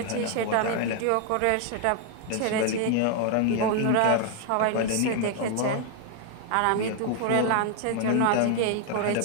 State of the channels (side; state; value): both; different; correlation 0.00